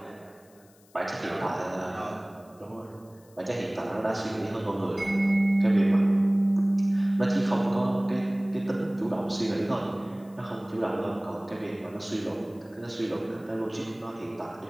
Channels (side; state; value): left; noise; hiss, 29 dB below the sound